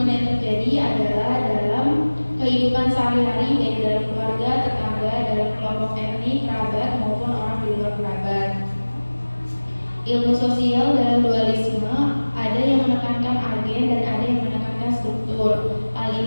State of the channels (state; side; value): inverted; both; correlation -1.00